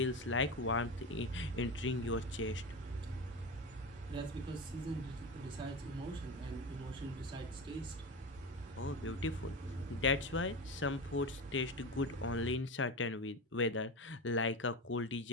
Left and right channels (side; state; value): both; normal; correlation 0.22